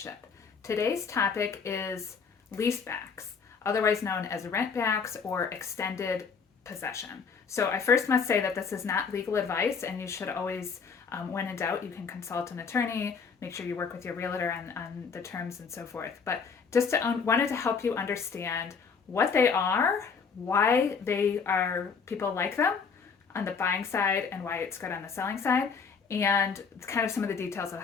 Today's topic is leasebacks, otherwise known as rentbacks or extended possession. So I first must say that this is not legal advice, and you should always, when in doubt, you can consult an attorney, make sure you work with your realtor on the terms and so forth. But just wanted to help you understand what they are, why they are, people like them on the buying side and why it's good on the selling side, and kind of some of the details of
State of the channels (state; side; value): quieter; right; 5.7 dB